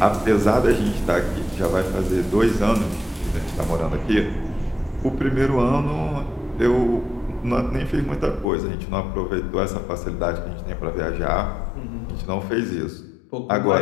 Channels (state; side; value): drops out; right; at 8.5 s